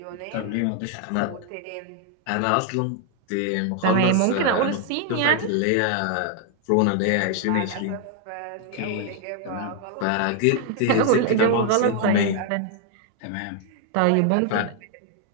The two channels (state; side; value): different; both; correlation 0.00